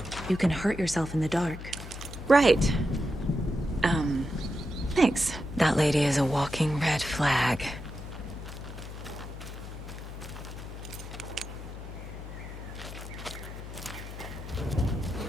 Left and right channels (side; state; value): left; noise; hum, 11 dB below the sound